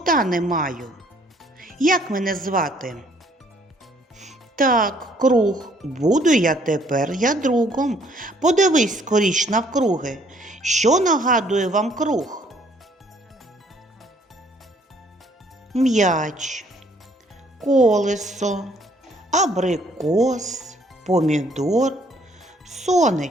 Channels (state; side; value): normal; both; correlation 0.63